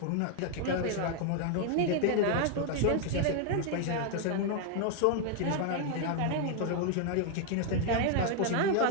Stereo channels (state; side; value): different; both; correlation 0.00